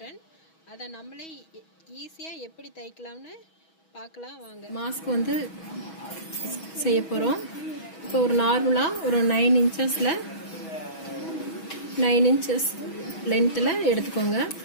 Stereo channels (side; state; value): right; late; 6.2 ms